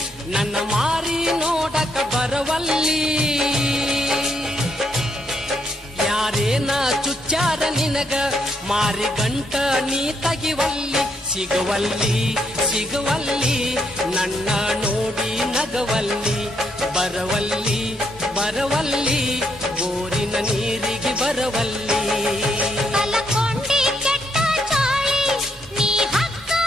ನನ್ನ ಮಾರಿ ನೋಡಕ ಬರವಲ್ಲಿ ಯಾರೇನ ಚುಚ್ಚಾರ ನಿನಗ ಮಾರಿ ಗಂಟ ನೀ ತಗಿವಲ್ಲಿ ಸಿಗುವಲ್ಲಿ ಸಿಗುವಲ್ಲಿ ನನ್ನ ನೋಡಿ ನಗವಲ್ಲಿ ಬರವಲ್ಲಿ ಬರವಲ್ಲಿ ಬೋರಿನ ನೀರಿಗೆ ಬರವಲ್ಲಿ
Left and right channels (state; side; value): normal; both; correlation 0.75